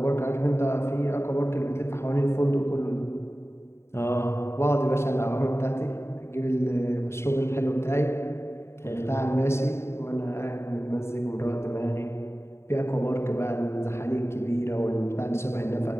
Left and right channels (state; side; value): late; right; 0.13 ms